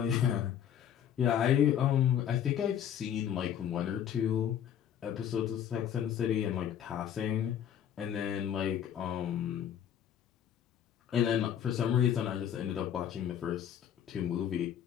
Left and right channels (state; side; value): quieter; right; 9.5 dB